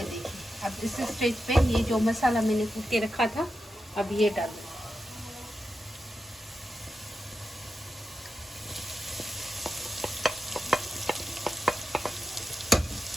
देखिए, अब इस स्टेज पे ये जो मसाला मैंने कूट के रखा था अब ये डाल दूँ।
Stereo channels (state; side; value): normal; both; correlation 0.89